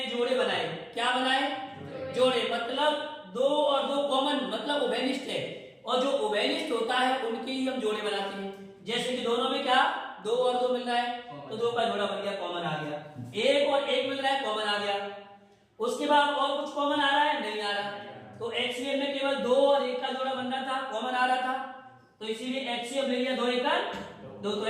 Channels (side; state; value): both; identical; correlation 1.00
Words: जोड़े बनाए। क्या बनाए? जोड़े। मतलब 2 और 2 कॉमन, मतलब उभयनिष्ठ है, और जो उभयनिष्ठ होता है उनके ही हम जोड़े बनाते हैं। जैसे कि दोनों में क्या 2 और 2 मिल रहा है तो 2 का जोड़ा बन गया, कॉमन आ गया। 1 और 1 मिल रहा है, कॉमन आ गया। उसके बाद और कुछ कॉमन आ रहा है? नहीं आ रहा। तो एचसीएफ में केवल 2 और 1 का जोड़ा बनना था, कॉमन आ रहा था, तो इसीलिए एचसीएफ ले लिया 2 1 2। तो